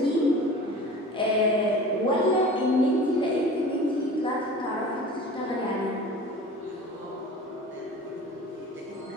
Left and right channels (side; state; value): both; normal; correlation 0.39